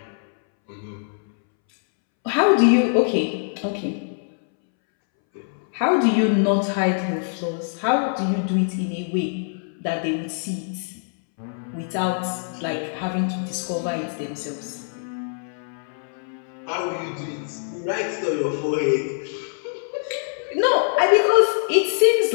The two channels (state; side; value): silent; right; 63 dB below the other